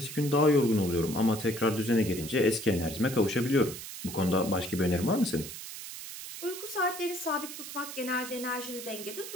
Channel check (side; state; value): right; noise; hiss, 10 dB below the sound